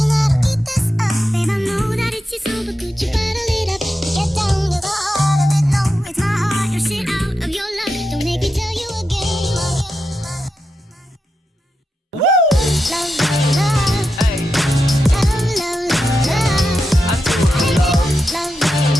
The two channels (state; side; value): normal; both; correlation 0.88